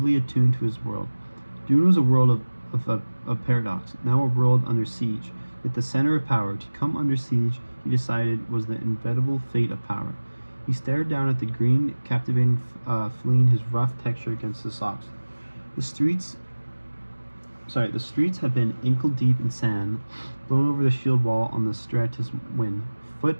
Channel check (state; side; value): inverted; both; correlation -1.00